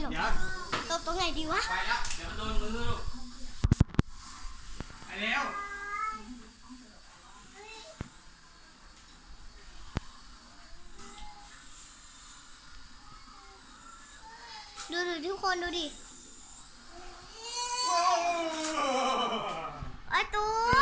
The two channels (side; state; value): both; identical; correlation 1.00